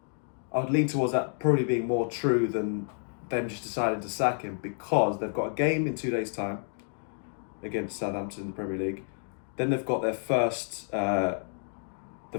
towards that probably being more true than them just deciding to sack him, because they've got a game in 2 days' time against Southampton in the Premier League. Then they've got their first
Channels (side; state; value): right; silent; 57 dB below the other